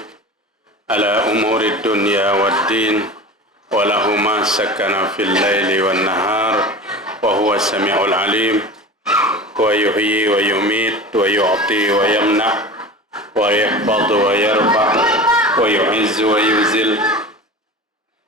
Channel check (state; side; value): normal; both; correlation 0.34